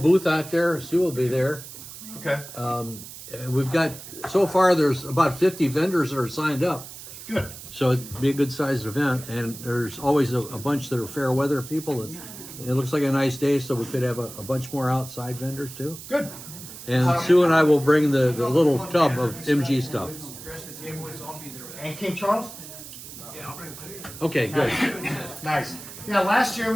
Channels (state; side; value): noise; right; hiss, 14 dB below the sound